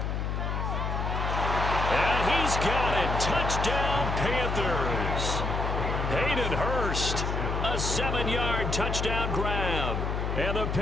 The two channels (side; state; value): left; noise; hum, 1 dB below the sound